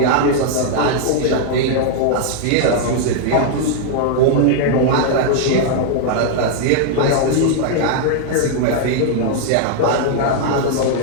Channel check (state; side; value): different; both; correlation -0.01